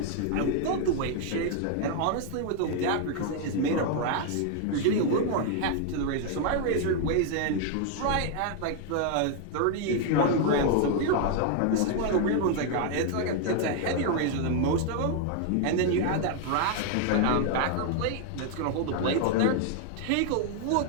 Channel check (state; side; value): different; both; correlation 0.00